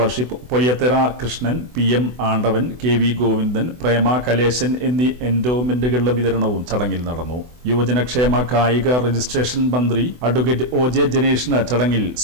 പൊയ്യത്തറ കൃഷ്ണൻ, പി.എം. ആണ്ടവൻ, കെ.വി. ഗോവിന്ദൻ, പ്രേമ കലേശൻ എന്നീ എൻഡോമെന്റുകളുടെ വിതരണവും ചടങ്ങിൽ നടന്നു. യുവജനക്ഷേമ കായിക രജിസ്ട്രേഷൻ മന്ത്രി അഡ്വക്കേറ്റ് ഒ.ജെ. ജനേഷിന് ചടങ്ങിൽ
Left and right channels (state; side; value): late; left; 24 ms